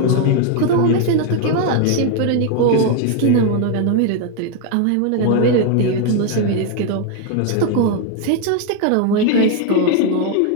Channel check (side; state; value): both; different; correlation 0.01